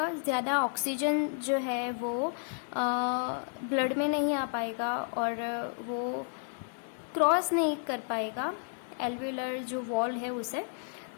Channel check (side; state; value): right; silent; digital silence